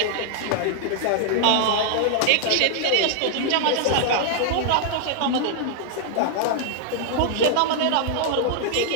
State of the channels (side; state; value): both; different; correlation -0.01